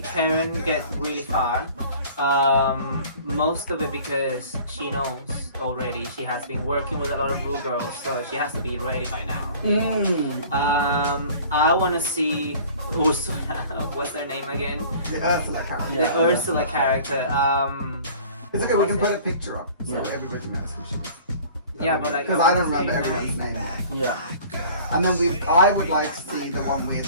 Karen get really far. Most of it because she knows already. She has been working with a lot of Ru girls, so she has to be ready by now. I want to see Ursula. What's their name again? The Ursula character. The Ursula character. It's okay, we can put a picture up so Yeah. everybody knows who she is. Yeah, but like Because I don't want to remember see everyone's her. name. Yeah. And then I would like to see the one with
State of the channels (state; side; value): inverted; both; correlation -0.47